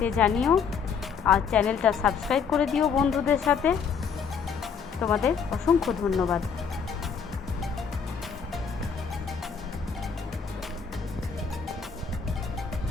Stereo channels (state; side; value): quieter; right; 6.3 dB